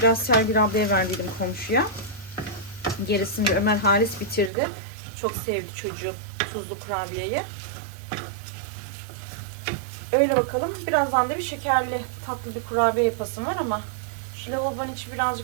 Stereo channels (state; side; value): drops out; left; at 4.5 s